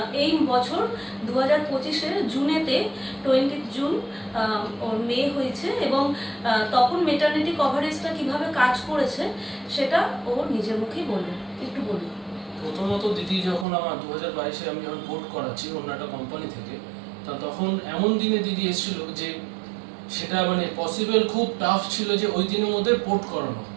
এই বছর 2025-এর জুনেতে 20 জুন ওর মেয়ে হয়েছে, এবং তখন মেটারনিটি কভারেজটা কিভাবে কাজ করেছে সেটা ও নিজের মুখেই বলবে। একটু বলুন। প্রথমত দিদি, যখন আমার 2022-এ আমি যখন পোর্ট করাচ্ছি অন্য একটা কোম্পানি থেকে, তা তখন এমন দিনে দিদি এসেছিল যে সেটা মানে পসিবল খুব টাফ ছিল যে ওই দিনের মধ্যে পোর্ট করানো।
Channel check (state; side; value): drops out; left; at 13.7 s